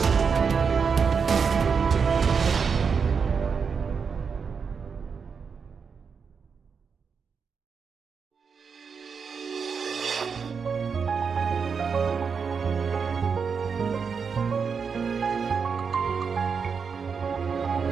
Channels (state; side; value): quieter; left; 5.9 dB